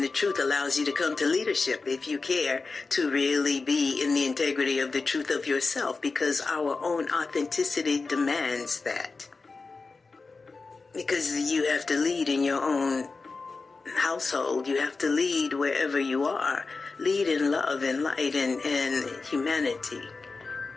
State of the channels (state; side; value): quieter; right; 4.1 dB